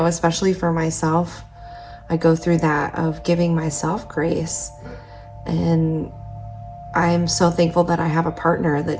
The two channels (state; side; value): identical; both; correlation 1.00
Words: especially for myself. I go through that of giving myself grace. And I'm so thankful that I have a partner